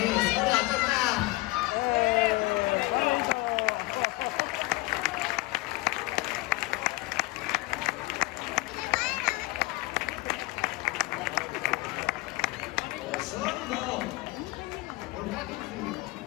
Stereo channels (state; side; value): quieter; right; 21.8 dB